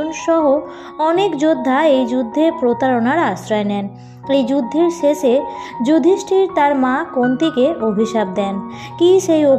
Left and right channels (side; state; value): both; identical; correlation 1.00